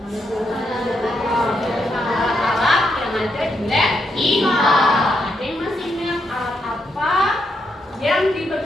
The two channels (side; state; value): both; normal; correlation 0.80